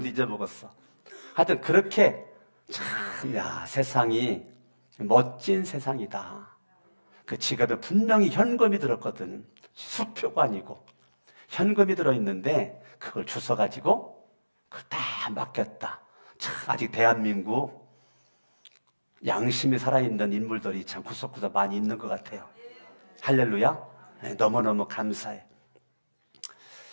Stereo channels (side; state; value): both; inverted; correlation -1.00